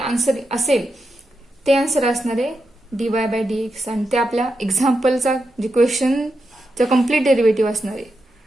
असेल ते आन्सर असणार आहे dy बाय dx, आणि ते आपल्या एक्झाम्पलचा जे क्वेश्चनचा कम्प्लीट डेरिव्हेटिव्ह असणार आहे.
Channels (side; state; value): both; normal; correlation 0.87